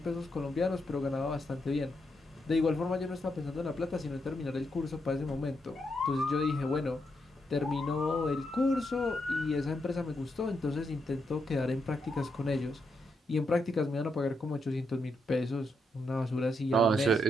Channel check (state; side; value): normal; both; correlation 0.81